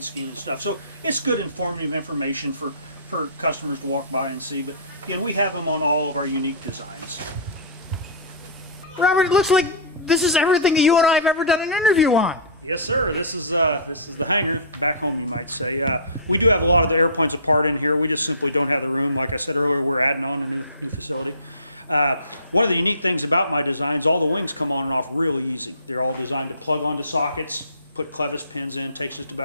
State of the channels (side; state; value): both; inverted; correlation -0.31